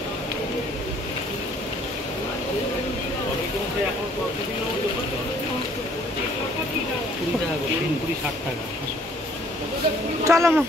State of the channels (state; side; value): normal; both; correlation 0.60